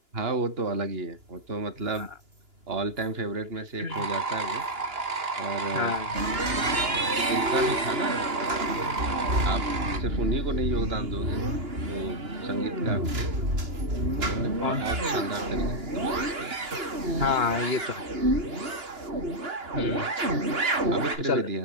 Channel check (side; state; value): left; late; 2.9 ms